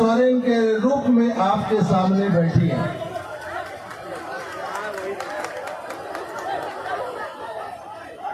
के रूप में आपके सामने बैठी है।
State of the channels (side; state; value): both; identical; correlation 1.00